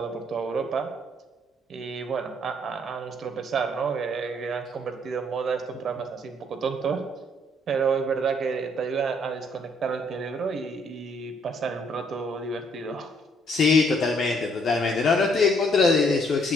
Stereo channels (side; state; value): both; normal; correlation 0.67